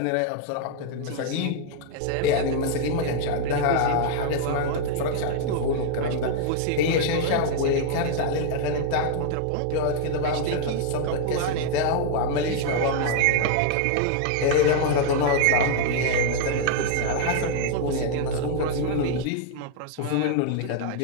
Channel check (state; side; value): different; both; correlation 0.00